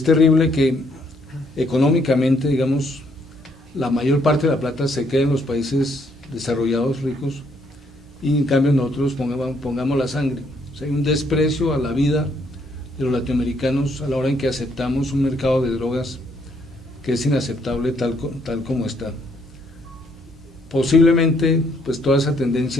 terrible que económicamente, digamos, la mayor parte de la plata se quede en los países desarrollados, ricos, y en cambio nosotros pongamos la sangre. O sea, hay un desprecio a la vida de los latinoamericanos a la hora en que aceptamos un mercado de drogas que es inaceptable tal como está. Posiblemente, pues toda esa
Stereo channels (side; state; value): both; normal; correlation 0.69